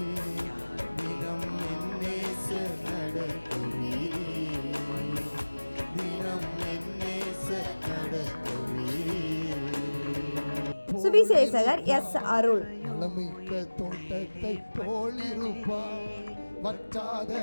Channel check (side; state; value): both; inverted; correlation -1.00